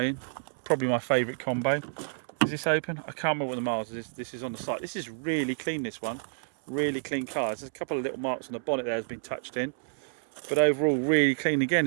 in. Probably my favourite combo. Is this open? I can't remember what the miles is. This is on the site. This is really clean, this one. Really clean car. There's a couple of little marks on the bonnet there has been touched in. But overall, really clean. Again,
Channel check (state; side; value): silent; left; 58 dB below the other